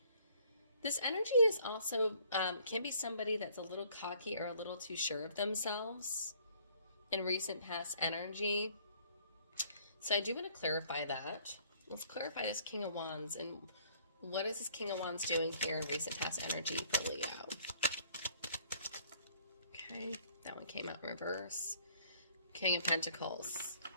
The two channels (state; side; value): inverted; both; correlation -0.59